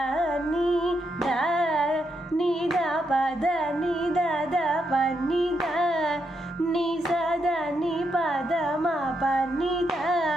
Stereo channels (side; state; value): both; normal; correlation 0.81